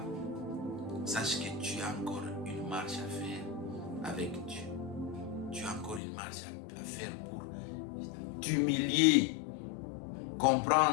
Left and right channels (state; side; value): drops out; right; at 6.0 s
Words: sache que tu as encore une marche à faire avec Dieu. Tu as encore une marche à faire pour t'humilier,